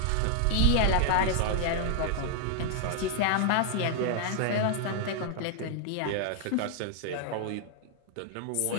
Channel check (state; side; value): different; both; correlation 0.00